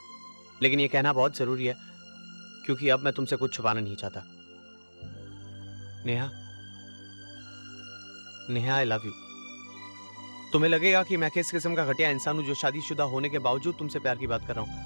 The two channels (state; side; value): inverted; both; correlation -1.00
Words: लेकिन ये कहना बहुत जरूरी है, क्योंकि अब मैं तुमसे कुछ छुपाना नहीं चाहता। Neha, Neha, I love you. तुम्हें लगेगा कि मैं किस किस्म का घटिया इंसान हूं जो शादीशुदा होने के बावजूद तुमसे प्यार की बात कर रहा हूं,